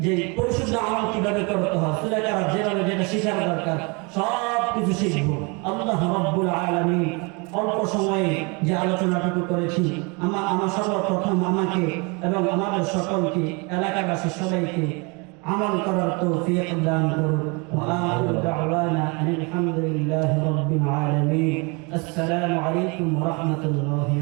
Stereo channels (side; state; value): left; quieter; 30.2 dB